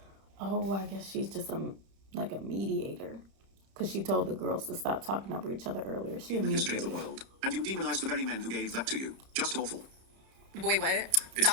Oh, I guess she's just a mediator. Because she told the girls to stop talking over each other earlier. She a In the history of mediator. the world. And you demonize the very men who gave that to you. Just awful. Boy, what? That's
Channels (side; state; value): left; late; 31 ms